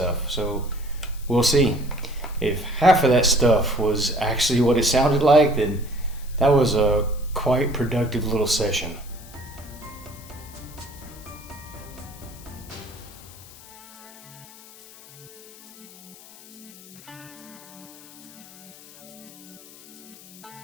So we'll see. If half of that stuff was actually what it sounded like, then that was a quite productive little session.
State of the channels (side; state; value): left; noise; hiss, 20 dB below the sound